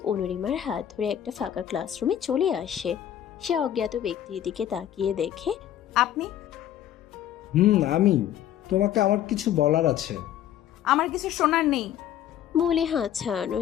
অনুরিমার হাত ধরে একটা ফাঁকা ক্লাসরুমে চলে আসে। সে অজ্ঞাত ব্যক্তির দিকে তাকিয়ে দেখে, আপনি? আমি। তোমাকে আমার কিছু বলার আছে। আমার কিছু শোনার নেই বলে হাত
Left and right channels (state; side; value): quieter; right; 11.0 dB